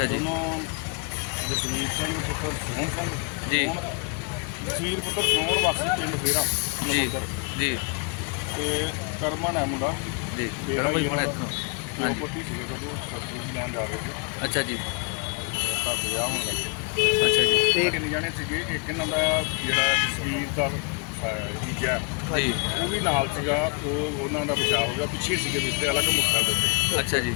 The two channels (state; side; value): quieter; right; 36.0 dB